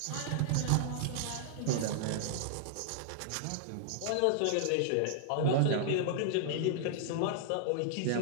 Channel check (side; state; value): both; different; correlation -0.01